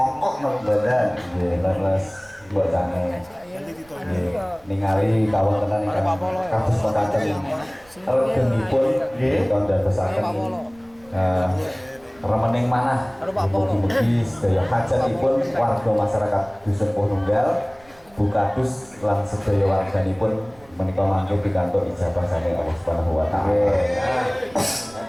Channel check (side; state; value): right; noise; rumble, 28 dB below the sound